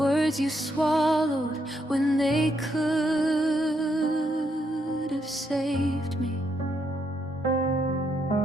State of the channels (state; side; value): normal; both; correlation 0.77